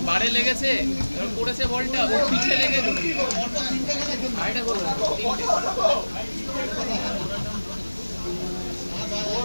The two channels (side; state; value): both; inverted; correlation -1.00